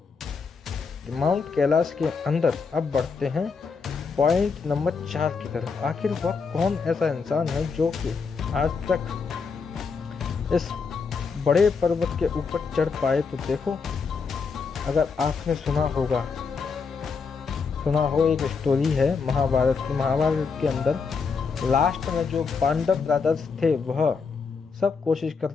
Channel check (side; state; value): right; quieter; 5.2 dB